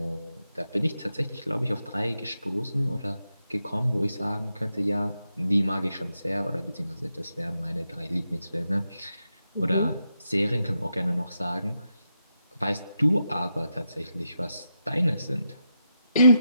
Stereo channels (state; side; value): inverted; both; correlation -0.85